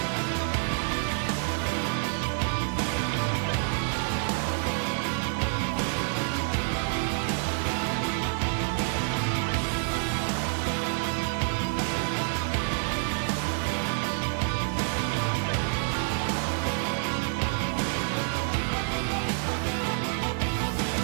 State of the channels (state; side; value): silent; left; 59 dB below the other